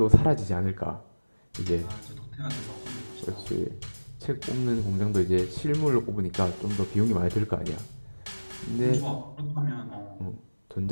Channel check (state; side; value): inverted; both; correlation -1.00